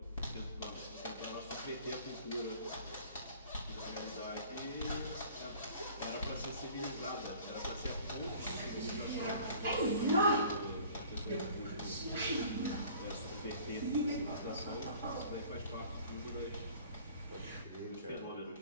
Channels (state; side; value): inverted; both; correlation -0.49